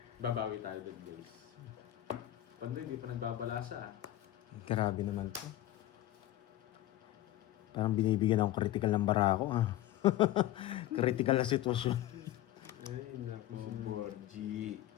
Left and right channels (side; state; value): right; quieter; 14.2 dB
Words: Babawi tayo dun, guys. Pando hindi pa nagbabalasa. Grabe naman to. Parang binibigyan akong critical ng bara ko critical na sitwasyon. Ay, naku si Borgie.